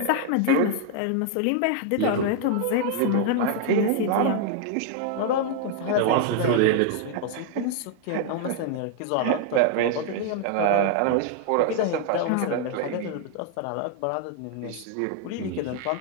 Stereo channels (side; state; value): both; different; correlation 0.00